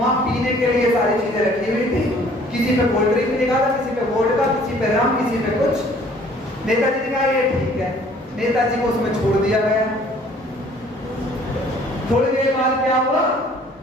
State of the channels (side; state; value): both; normal; correlation 0.56